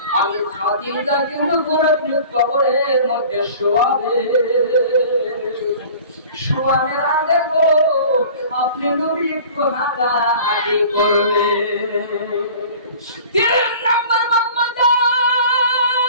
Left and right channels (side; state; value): both; inverted; correlation -0.44